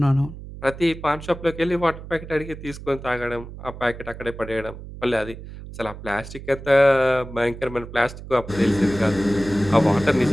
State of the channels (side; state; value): right; noise; hum, 13 dB below the sound